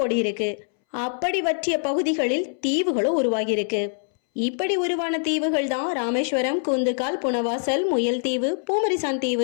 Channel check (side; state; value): right; silent; 63 dB below the other